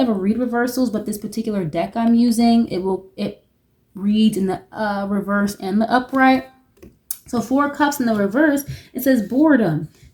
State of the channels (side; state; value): both; identical; correlation 1.00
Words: read reversals, but this particular deck I'm using, it reads in the reverse and the upright. So 4 of Cups in the reverse, it says boredom,